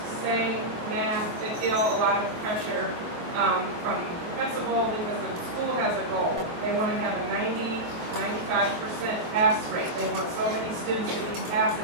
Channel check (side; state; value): left; late; 23 ms